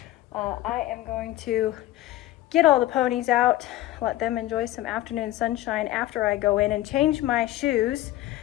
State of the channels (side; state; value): right; quieter; 15.3 dB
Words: I am going to get all the ponies out, let them enjoy some afternoon sunshine after I go in and change my shoes